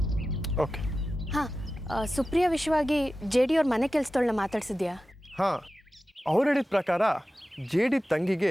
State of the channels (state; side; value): normal; both; correlation 0.94